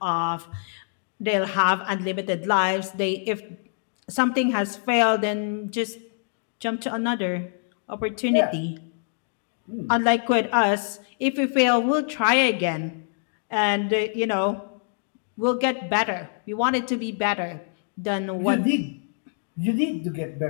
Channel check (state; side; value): silent; right; digital silence